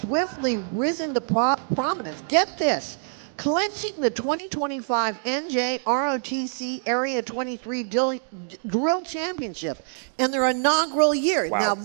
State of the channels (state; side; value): silent; left; digital silence